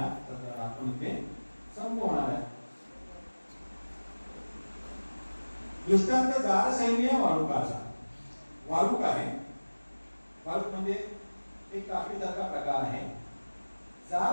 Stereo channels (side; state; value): both; inverted; correlation -1.00